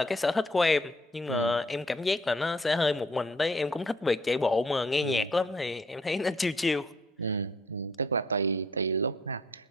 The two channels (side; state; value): both; normal; correlation 0.62